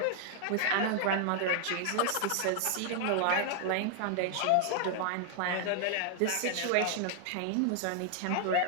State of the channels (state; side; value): different; both; correlation 0.00